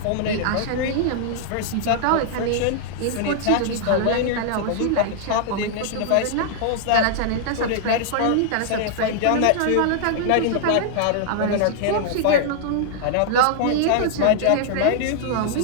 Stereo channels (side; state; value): both; different; correlation -0.01